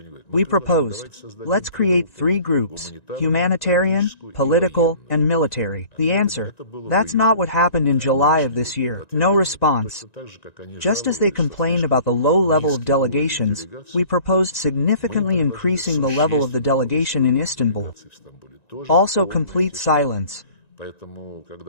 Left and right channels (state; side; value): late; right; 1.9 ms